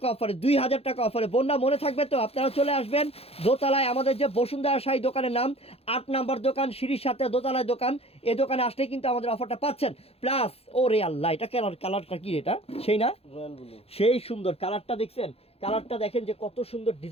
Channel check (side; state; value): right; late; 0.29 ms